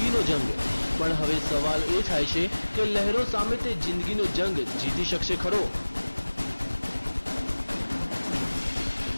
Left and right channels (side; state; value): both; inverted; correlation -1.00